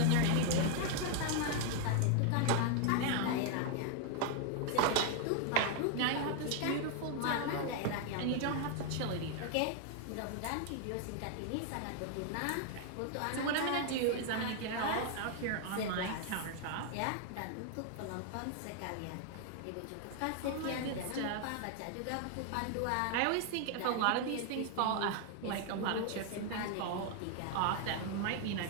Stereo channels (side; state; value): both; different; correlation 0.00